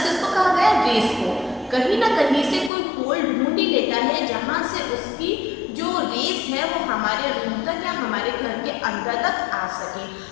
किसको कहा गया? रेस को। कहीं ना कहीं से कोई होल ढूंढ ही लेता है जहाँ से उसकी जो रेस है वो हमारे रूम तक या हमारे घर के अंदर तक आ सके।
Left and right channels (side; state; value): right; drops out; at 2.7 s